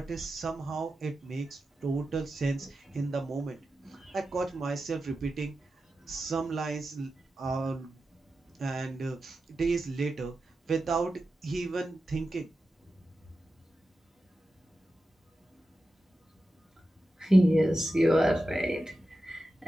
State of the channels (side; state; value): both; normal; correlation 0.92